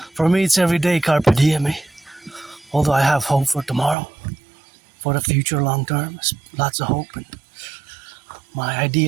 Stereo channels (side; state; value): left; drops out; at 4.0 s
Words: for me, it's every day carpe diem. Although I have hope for tomorrow, for the future, long term, lots of hope. And my